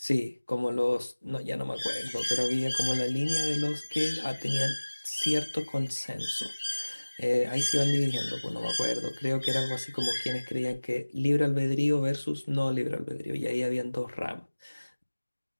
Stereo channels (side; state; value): both; inverted; correlation -1.00